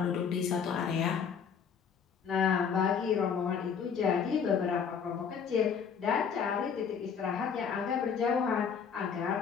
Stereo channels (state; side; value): quieter; right; 6.8 dB